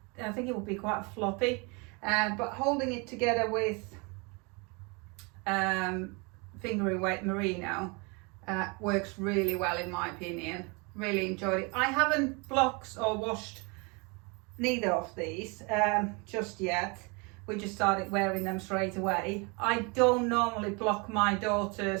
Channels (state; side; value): quieter; left; 30.2 dB